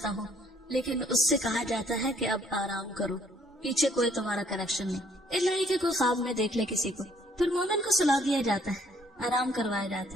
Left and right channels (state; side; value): normal; both; correlation 0.64